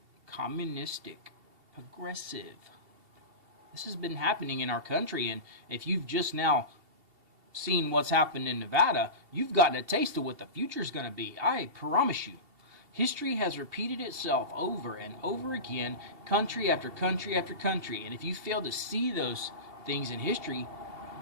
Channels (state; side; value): late; left; 2.7 ms